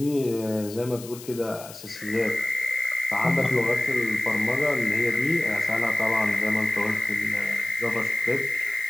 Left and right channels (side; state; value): left; noise; hiss, 16 dB below the sound